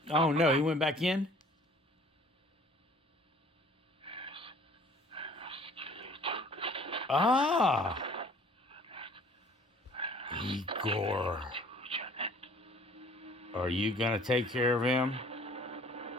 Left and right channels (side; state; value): both; normal; correlation 0.53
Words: Oh no, he went back in? Ah! Igor. Are you gonna take care of him?